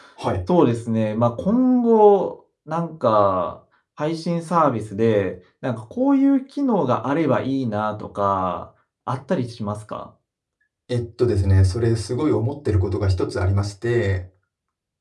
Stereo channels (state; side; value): identical; both; correlation 1.00